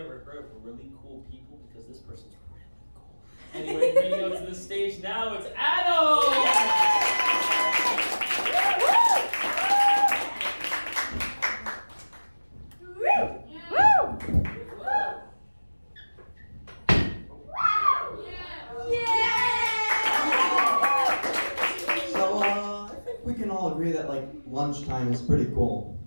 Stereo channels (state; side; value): inverted; both; correlation -1.00